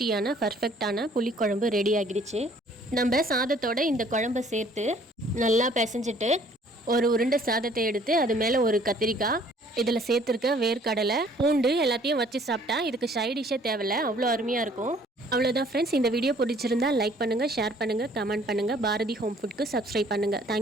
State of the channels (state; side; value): normal; both; correlation 0.58